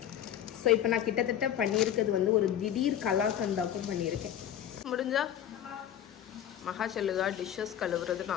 ஸோ இப்போ நான் கிட்டத்தட்ட பண்ணியிருக்கிறது வந்து ஒரு திடீர் கலாக்கந்தாக்கும் பண்ணியிருக்கேன். முடிஞ்சா மகா சொல்லுதா டிஷ்ஷஸ் கழுவுறது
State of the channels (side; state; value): right; quieter; 10.4 dB